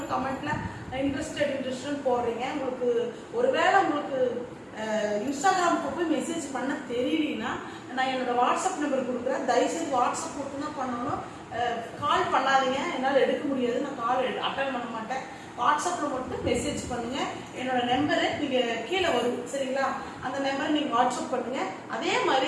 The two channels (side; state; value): both; identical; correlation 1.00